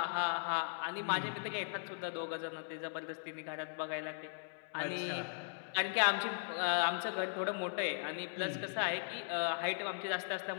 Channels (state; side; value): silent; right; digital silence